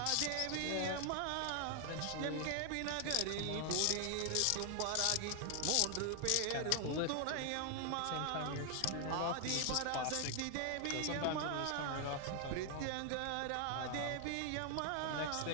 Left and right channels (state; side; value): different; both; correlation 0.00